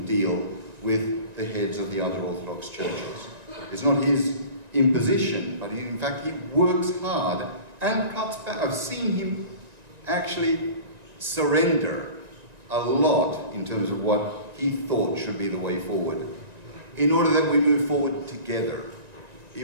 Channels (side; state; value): left; late; 1.9 ms